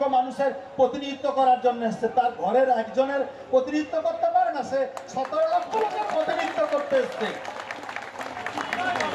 মানুষের প্রতিনিধিত্ব করার জন্য এসছে। তার ঘরের একজনের প্রতিনিধিত্ব করতে পারে না, সে 17 লক্ষ লোকের প্রতিনিধিত্ব করতে এসছে।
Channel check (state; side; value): identical; both; correlation 1.00